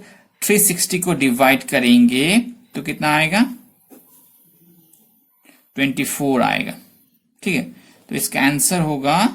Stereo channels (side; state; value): both; identical; correlation 1.00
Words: 360 को डिवाइड करेंगे तो कितना आएगा, 24 आएगा। ठीक है, तो इसका आंसर होगा